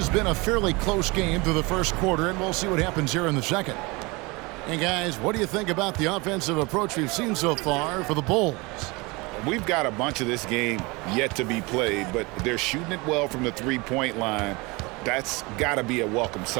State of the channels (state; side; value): quieter; left; 25.7 dB